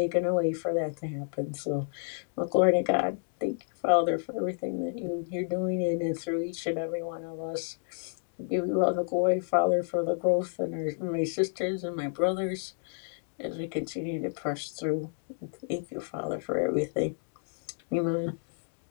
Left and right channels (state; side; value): silent; right; digital silence